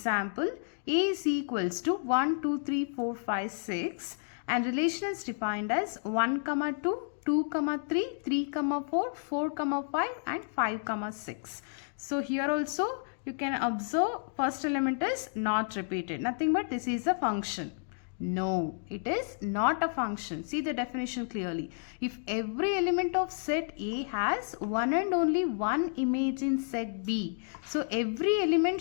A is equals to 1, 2, 3, 4, 5, 6 and relation is defined as 1, 2, 2, 3, 3, 4, 4, 5 and 5, 6. So here also you can observe first element is not repeated. Nothing but this is a function. No, it is not a function. See the definition clearly. If every element of set A has one and only one image in set B, so every element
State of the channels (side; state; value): right; silent; digital silence